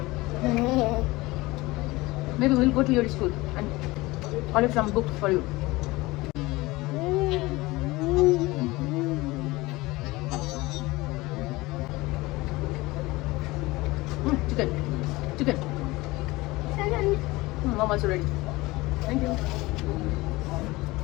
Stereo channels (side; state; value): right; quieter; 21.0 dB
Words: maybe we'll go to your school and collect some books for you. Chicken. Mom also ready. Thank you.